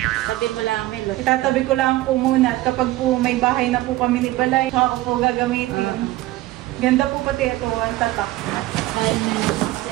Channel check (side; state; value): left; quieter; 17.3 dB